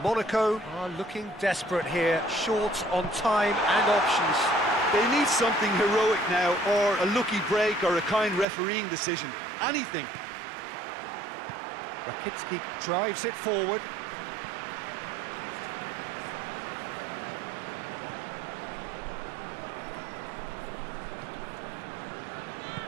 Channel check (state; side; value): drops out; left; at 8.5 s